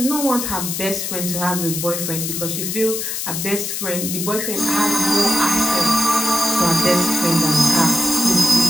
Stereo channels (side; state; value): left; noise; hiss, 3 dB below the sound